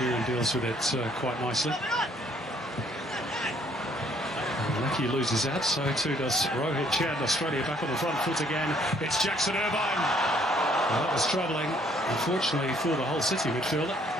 deals with it quite nicely. Lucky loses that, so too does Rohit Chan. Australia back on the front foot again. It's Jackson Irvine. Well, that was troubling, unfortunately, for the whole City midfielder.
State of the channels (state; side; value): normal; both; correlation 0.63